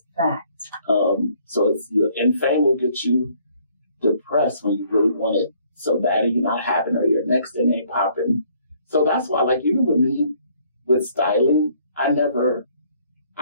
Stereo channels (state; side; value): inverted; both; correlation -0.63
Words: That's fact. So and fame will get you depressed when you really want it so bad and you're not having it or your next thing ain't popping. So that's why, like, even with me, with styling, I've never